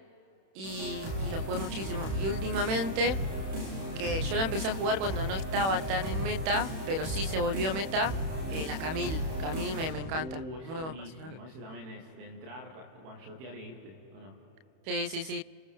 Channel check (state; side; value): late; left; 31 ms